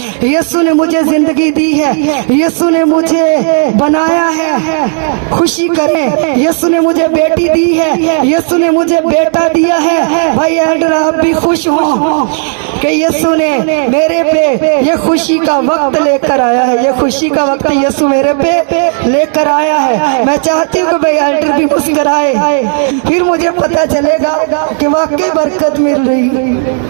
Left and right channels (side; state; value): left; silent; 58 dB below the other